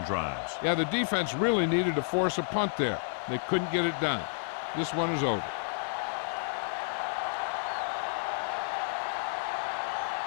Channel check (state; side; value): silent; right; digital silence